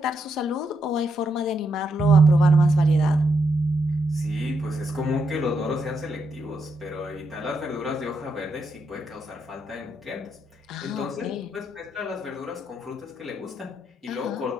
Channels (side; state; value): both; normal; correlation 0.80